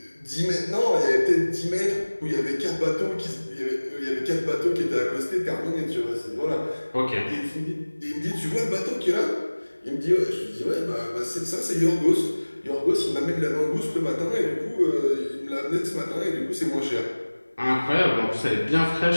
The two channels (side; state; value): both; inverted; correlation -1.00